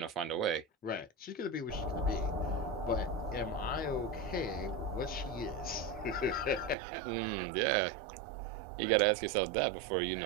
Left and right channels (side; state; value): left; drops out; at 6.8 s